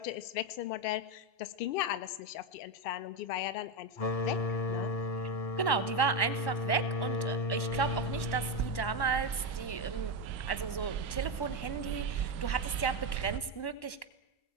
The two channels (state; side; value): late; right; 1.1 ms